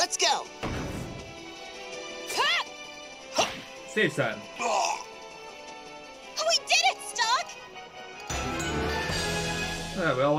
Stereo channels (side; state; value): both; identical; correlation 1.00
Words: go. Save time. We did it, Stock! Alright, we all